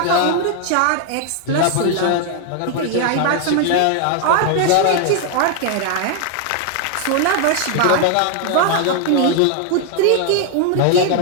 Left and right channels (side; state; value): both; different; correlation 0.00